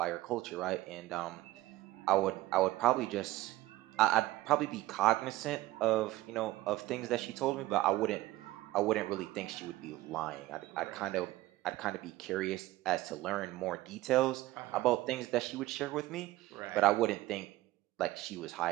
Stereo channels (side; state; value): left; quieter; 17.4 dB